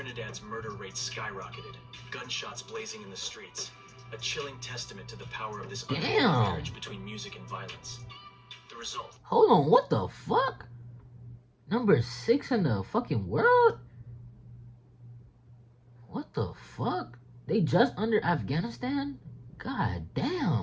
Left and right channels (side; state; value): both; identical; correlation 1.00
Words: murder rate skyrocketed, gunshots blazing in the streets, a chilling testament to the power of this unholy marriage between music and violence. The result. Hold on, what the fuck? Number 6 in the fucking world? What the fuck? They just under Afghanistan? God